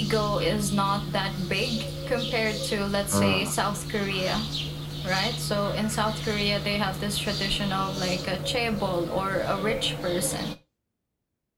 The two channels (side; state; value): both; identical; correlation 1.00